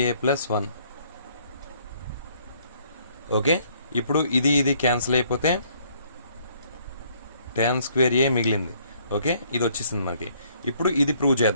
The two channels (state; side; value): inverted; both; correlation -0.64